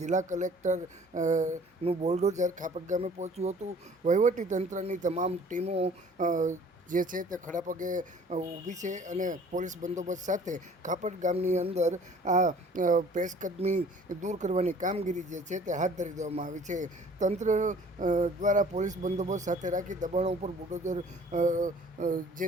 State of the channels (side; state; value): both; normal; correlation 0.51